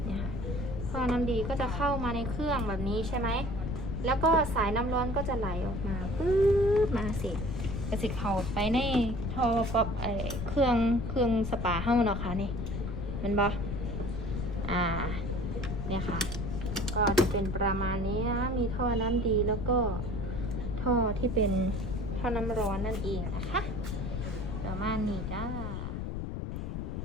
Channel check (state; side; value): noise; left; rumble, 4 dB below the sound